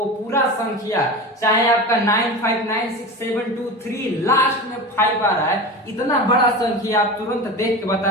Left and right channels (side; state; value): both; normal; correlation 0.29